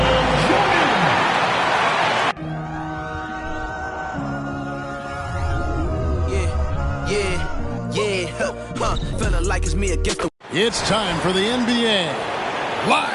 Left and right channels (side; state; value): both; identical; correlation 1.00